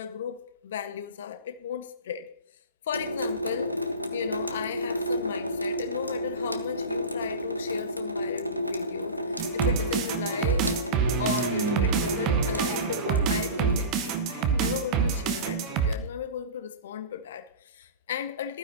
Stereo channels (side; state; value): both; inverted; correlation -0.30